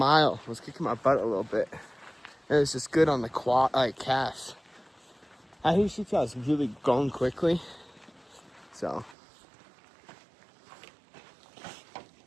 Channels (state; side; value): drops out; left; at 9.2 s